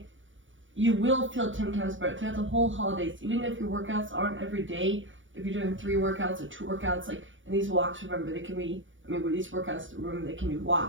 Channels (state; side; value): late; left; 0.56 ms